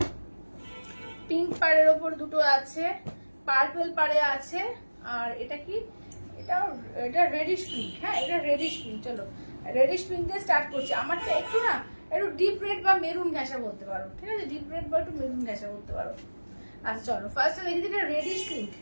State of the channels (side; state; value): both; inverted; correlation -1.00